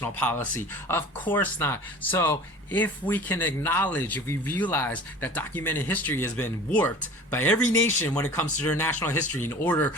policy? Of course not. So if we can acknowledge, if we realize that documented history has been warped by every nation when it comes to their national history in order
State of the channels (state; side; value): normal; both; correlation 0.42